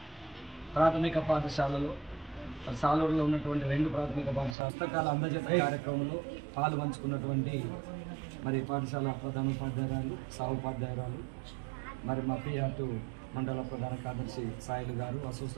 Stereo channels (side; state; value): left; drops out; at 4.5 s